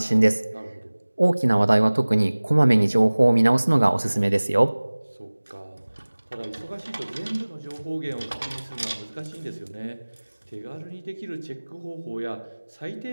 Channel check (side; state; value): both; inverted; correlation -1.00